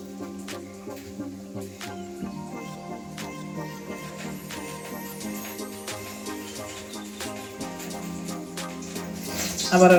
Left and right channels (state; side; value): identical; both; correlation 1.00